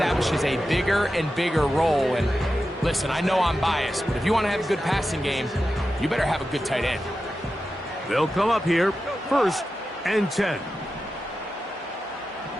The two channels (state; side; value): normal; both; correlation 0.91